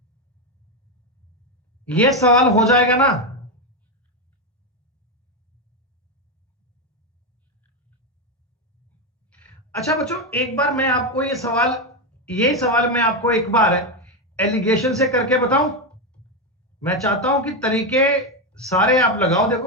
ये सवाल हो जाएगा ना। अच्छा बच्चों एक बार मैं आपको ये सवाल मैं आपको एक बार एलिगेशन से करके बताऊं। मैं चाहता हूं कि तरीके सारे आप लगाओ।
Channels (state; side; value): normal; both; correlation 0.09